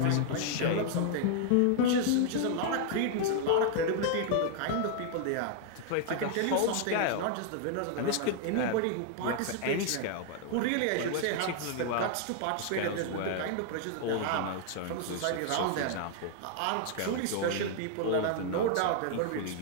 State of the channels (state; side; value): different; both; correlation 0.00